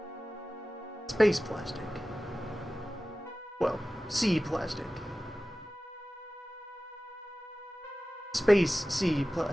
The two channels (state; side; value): normal; both; correlation 0.96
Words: Space plastic. Well, sea plastic. Space sea